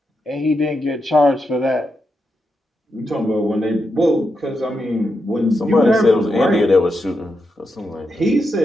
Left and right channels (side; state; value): both; normal; correlation 0.85